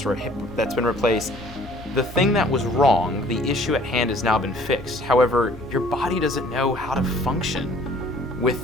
or a hip that's been replaced. The thing that was wrong, the issue at hand, has now been fixed. However, your body doesn't know how to function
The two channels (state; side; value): normal; both; correlation 0.55